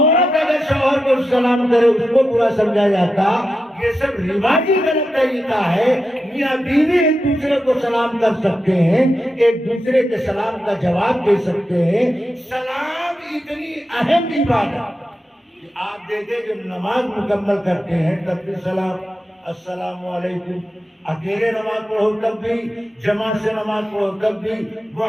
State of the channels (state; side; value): normal; both; correlation 0.89